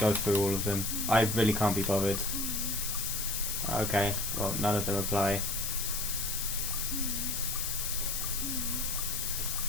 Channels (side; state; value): left; noise; hiss, 1 dB below the sound